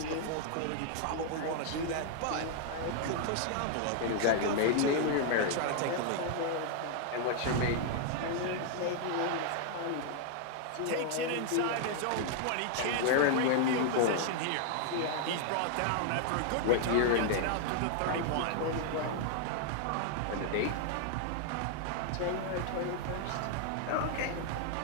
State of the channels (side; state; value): both; different; correlation 0.00